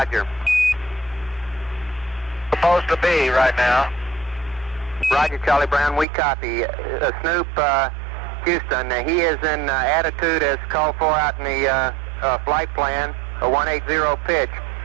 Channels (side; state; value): left; drops out; at 6.1 s